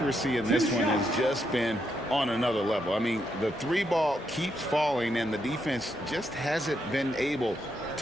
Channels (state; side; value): normal; both; correlation 0.79